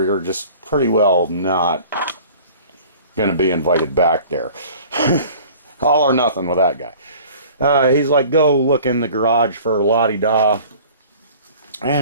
you're just pretty well not going to be invited back there. All or nothing with that guy. He's like, go look in the garage for la-di-da.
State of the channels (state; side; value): inverted; both; correlation -0.46